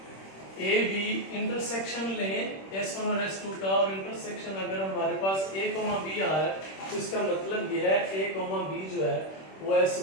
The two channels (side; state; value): right; late; 26 ms